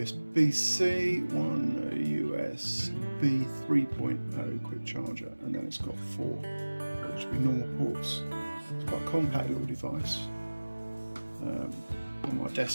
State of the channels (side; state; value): both; inverted; correlation -1.00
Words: one USB 3.0 quick charger, and then it's got four, which would be normal ports. It's quite a compact little device. On my